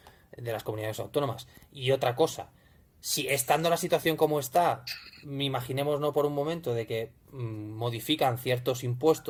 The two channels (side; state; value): both; identical; correlation 1.00